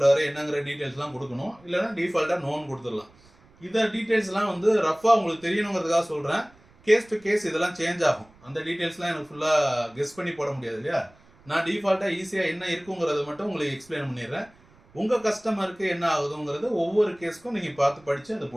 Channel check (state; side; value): noise; right; rumble, 28 dB below the sound